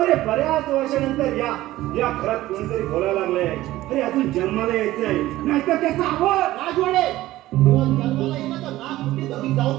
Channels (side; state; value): left; quieter; 16.1 dB